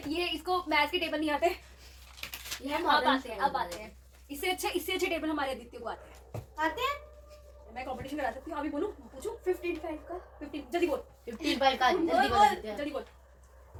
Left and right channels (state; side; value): identical; both; correlation 1.00